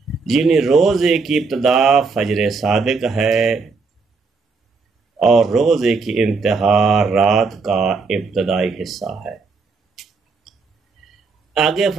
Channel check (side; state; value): left; quieter; 4.5 dB